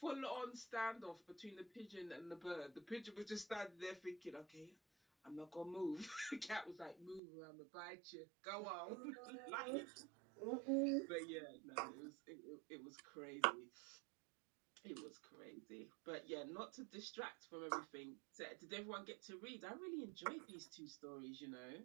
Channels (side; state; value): left; drops out; at 7.2 s